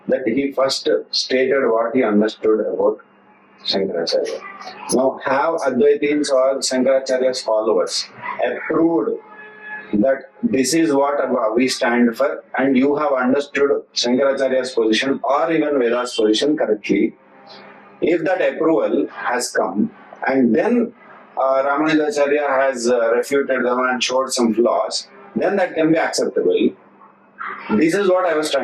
that he first stated what he understood about Shankaracharya. Now, have Advaitins or Shankaracharya's followers approved that this is what we stand for, and you have understood Shankaracharya's position or even Veda's position correctly? If that approval has come, and then Ramanujacharya has refuted them and showed some flaws, then that can be acceptable. This is what I was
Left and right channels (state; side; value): identical; both; correlation 1.00